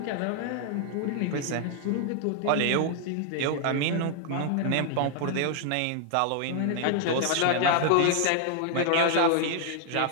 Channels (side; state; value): both; different; correlation 0.00